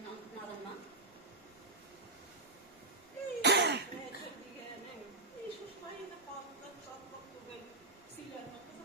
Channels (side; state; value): left; quieter; 3.0 dB